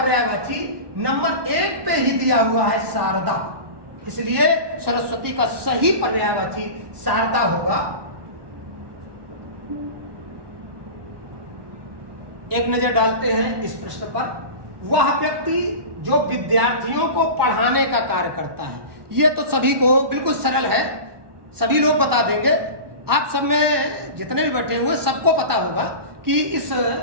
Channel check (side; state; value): left; late; 1.2 ms